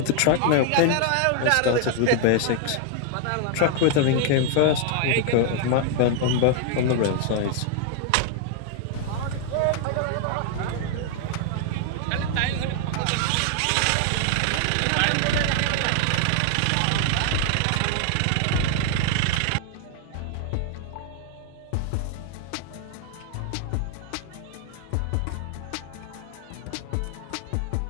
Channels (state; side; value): different; both; correlation 0.00